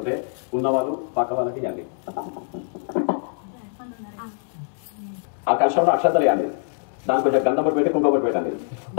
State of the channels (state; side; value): silent; right; digital silence